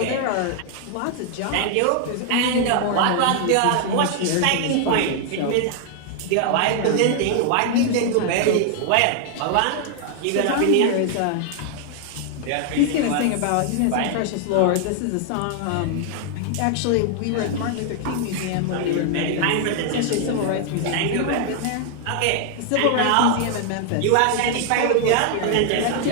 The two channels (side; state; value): both; different; correlation 0.00